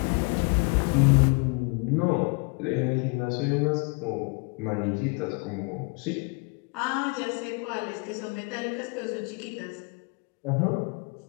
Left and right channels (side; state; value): right; quieter; 33.1 dB